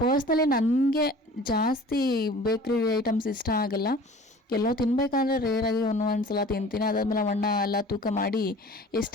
ಪರ್ಸ್ನಲಿ ನನಗೆ ಜಾಸ್ತಿ ಬೇಕ್ರಿ ಐಟಮ್ಸ್ ಇಷ್ಟ ಆಗಲ್ಲ. ಎಲ್ಲೋ ತಿನ್ನಬೇಕಾದ್ರೆ ರೇರಾಗಿ ಒಂದೊಂದು ಸಲ ತಿಂತೀನಿ. ಅದಾದಮೇಲೆ ಅಣ್ಣ ಎಲ್ಲ ತೂಕ ಮಾಡಿ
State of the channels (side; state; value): both; normal; correlation 0.45